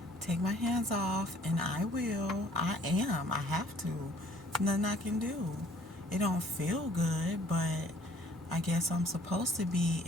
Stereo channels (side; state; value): both; normal; correlation 0.57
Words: Take my hands off, and I will. I am. I have to. Nothing I can do. It don't feel good, but I guess I'm supposed to be